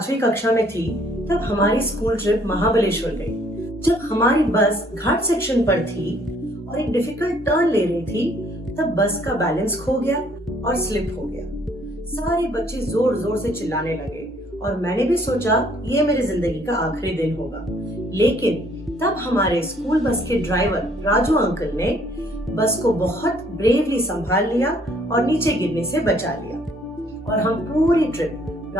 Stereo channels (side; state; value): both; normal; correlation 0.63